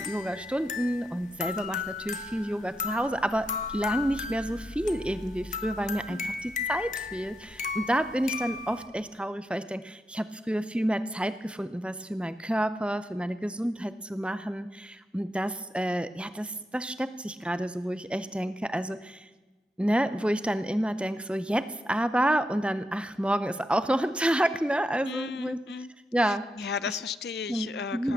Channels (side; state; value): both; normal; correlation 0.85